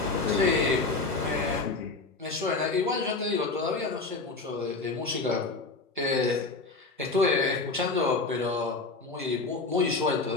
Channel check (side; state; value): right; quieter; 3.8 dB